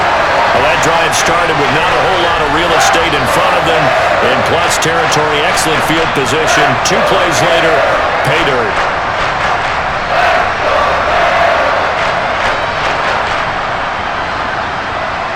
Well, that drive started with not a whole lot of real estate in front of them. In plus territory, excellent field position. 2 plays later, pay dirt.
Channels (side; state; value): both; identical; correlation 1.00